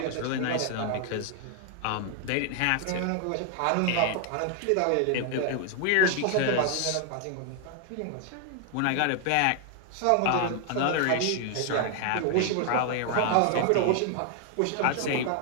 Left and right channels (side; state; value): both; different; correlation 0.00